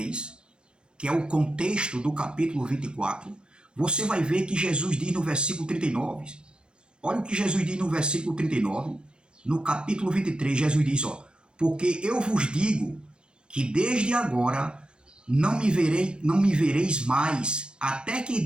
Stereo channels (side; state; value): left; late; 0.054 ms